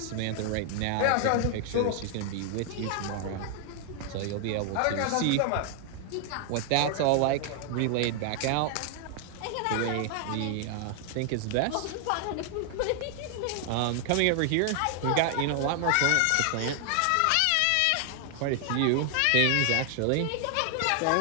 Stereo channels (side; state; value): both; different; correlation 0.00